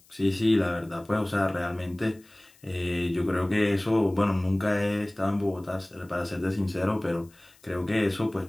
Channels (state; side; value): noise; left; hiss, 29 dB below the sound